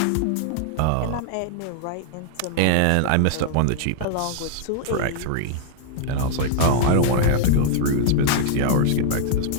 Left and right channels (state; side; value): different; both; correlation -0.01